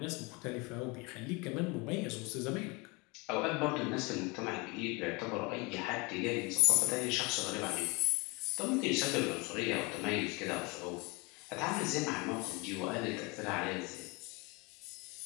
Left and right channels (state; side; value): quieter; right; 27.3 dB